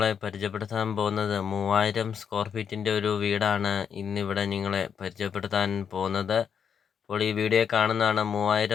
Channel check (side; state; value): right; quieter; 7.4 dB